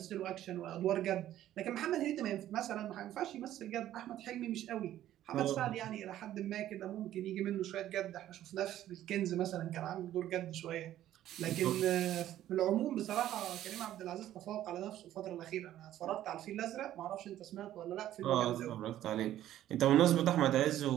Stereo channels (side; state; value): left; quieter; 12.7 dB